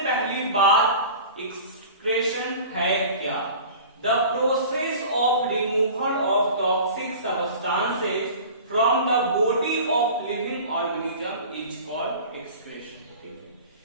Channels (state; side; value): inverted; both; correlation -0.40